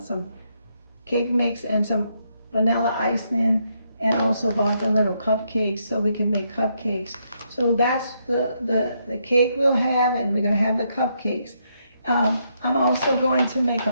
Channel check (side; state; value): both; inverted; correlation -0.77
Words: cake mix and some vanilla icing, and also bought the little cupcakes so we can make cupcakes. So that's the cake we'll have, and we're gonna have the cupcakes. I'm also going to make